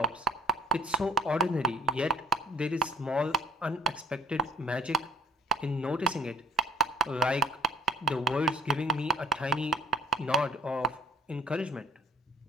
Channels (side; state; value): both; normal; correlation 0.54